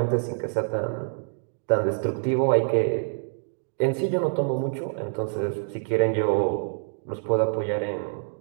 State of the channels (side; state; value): left; silent; digital silence